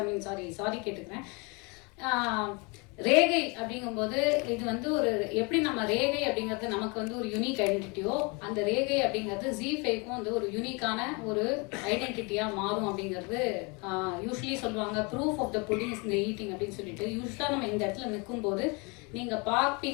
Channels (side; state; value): right; quieter; 30.0 dB